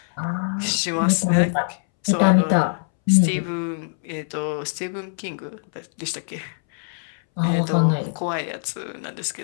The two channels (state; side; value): silent; right; 63 dB below the other